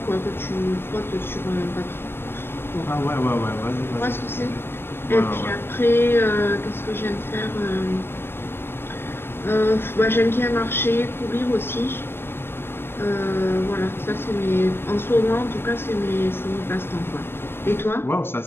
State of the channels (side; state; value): right; late; 0.11 ms